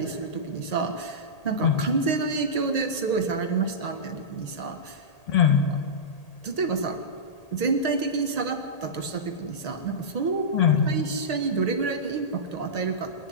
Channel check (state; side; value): late; right; 1.8 ms